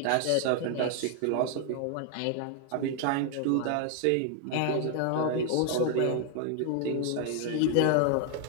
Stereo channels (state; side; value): different; both; correlation 0.00